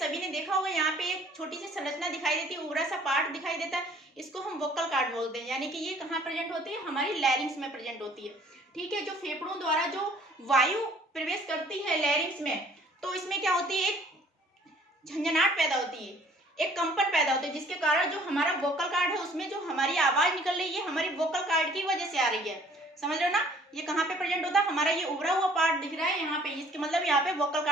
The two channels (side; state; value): both; normal; correlation 0.56